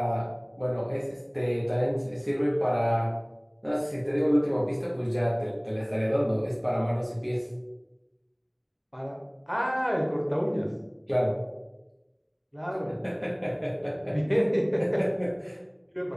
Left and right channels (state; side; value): identical; both; correlation 1.00